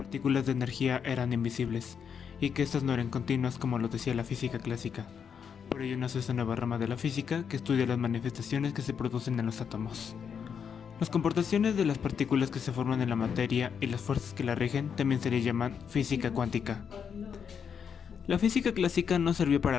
de energía eran invisibles, y que estas no eran continuas como lo decía la física clásica. Por ello nace esta nueva rama de la física que estudia las manifestaciones que se producen en los átomos. Las comportaciones de las partículas que se forman en la materia y las fuerzas que la rigen también se le llaman física cuántica. La física clásica no sirvió para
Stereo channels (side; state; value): right; quieter; 7.1 dB